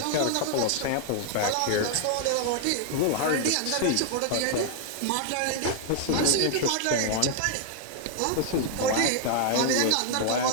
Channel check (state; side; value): different; both; correlation 0.00